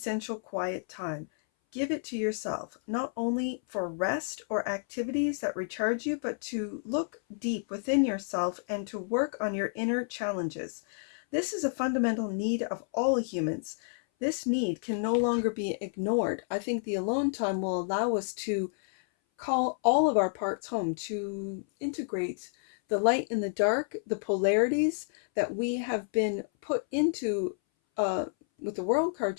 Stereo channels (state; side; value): silent; right; 58 dB below the other